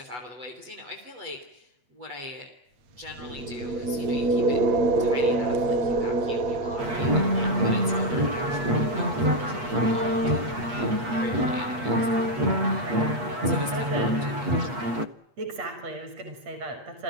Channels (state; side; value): late; left; 8.3 ms